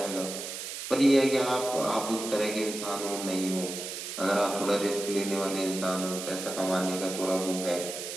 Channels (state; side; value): noise; right; hiss, 7 dB below the sound